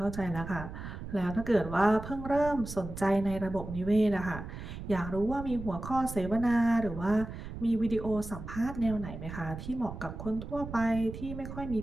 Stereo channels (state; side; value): noise; right; rumble, 9 dB below the sound